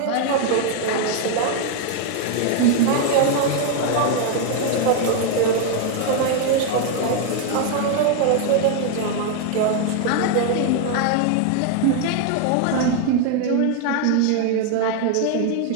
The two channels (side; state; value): both; different; correlation 0.01